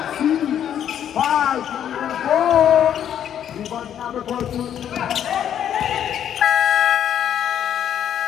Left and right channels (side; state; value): right; quieter; 9.8 dB